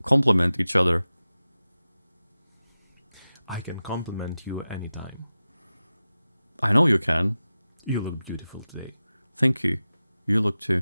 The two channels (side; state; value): both; inverted; correlation -0.94